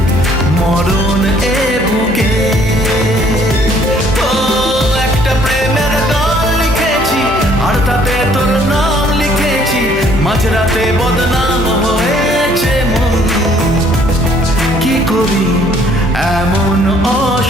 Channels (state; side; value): normal; both; correlation 0.61